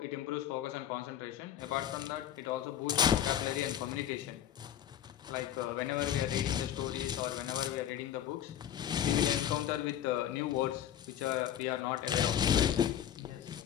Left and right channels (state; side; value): quieter; right; 10.5 dB